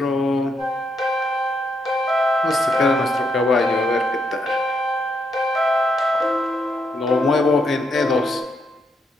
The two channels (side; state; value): both; normal; correlation 0.78